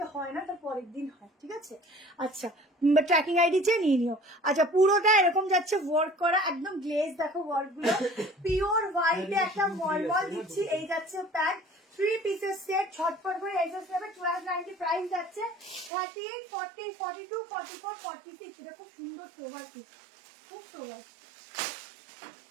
হয় না, তার পরের দিন হয়। ঠিক আছে, আচ্ছা ট্র্যাকিং আইডি চেয়ে নিয়ে নিও। আচ্ছা পুরোটা এরকম যাচ্ছে ওয়ার্ক করা, একদম গ্লেজ, দেখো ওয়ার্ক গুলো পিওর হোয়াইটে একটা মলমল দিচ্ছি। এই যাচ্ছে প্যান্ট 3 পিসের সেট, ছটফট করে এক্সেস নেবে। 1290 প্রাইস যাচ্ছে। 38, 40, 42, 44, 46। এটা খুব সুন্দর সোভার পিস, খুব সোভার।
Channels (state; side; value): drops out; left; at 15.9 s